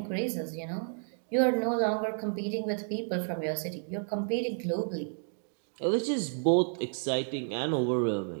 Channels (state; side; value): silent; left; digital silence